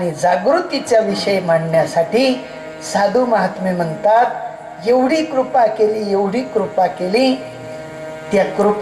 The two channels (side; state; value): both; identical; correlation 1.00